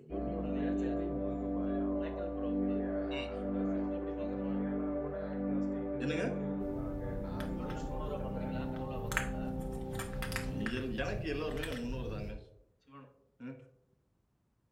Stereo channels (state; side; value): identical; both; correlation 1.00